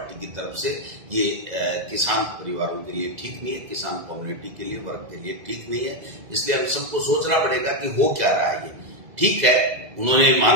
की तरफ से। ये किसान परिवारों के लिए ठीक नहीं है, किसान कम्युनिटी के लिए, वर्ग के लिए ठीक नहीं है। इसलिए हम सबको सोचना पड़ेगा कि हो क्या रहा है। ये ठीक है, उन्होंने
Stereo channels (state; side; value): late; left; 2.0 ms